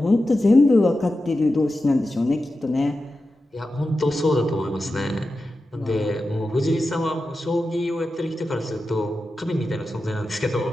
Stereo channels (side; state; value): both; normal; correlation 0.92